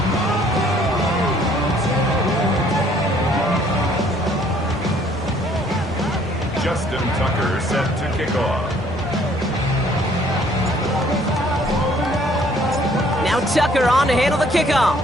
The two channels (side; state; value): both; normal; correlation 0.61